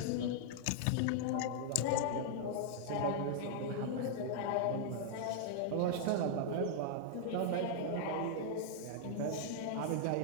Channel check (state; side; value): different; both; correlation -0.01